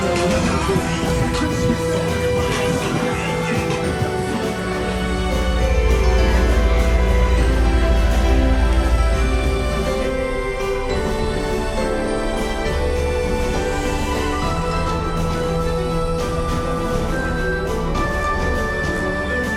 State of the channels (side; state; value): both; identical; correlation 1.00